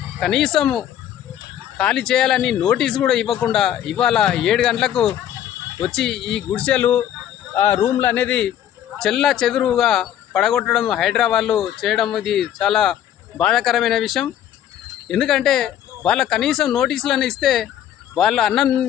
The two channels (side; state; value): right; quieter; 10.9 dB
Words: కనీసం ఖాళీ చేయాలని నోటీస్ కూడా ఇవ్వకుండా ఇవాళ 7 గంటలకు వచ్చి ఈ గుడిసెలు రూమ్లు అనేది చెల్లా చెదురుగా పడగొట్టడం హైదరాబాద్లో చేయడం ఇది చాలా బాధాకరమైన విషయం. ఎందుకంటే వాళ్ళ కనీసం నోటీసులను ఇస్తే వాళ్ళు